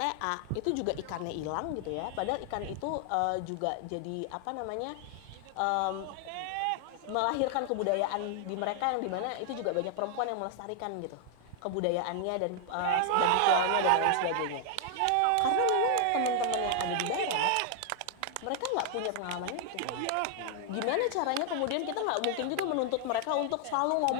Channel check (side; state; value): both; different; correlation 0.00